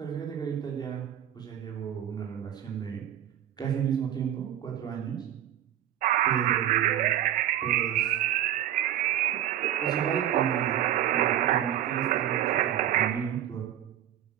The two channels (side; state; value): left; quieter; 11.4 dB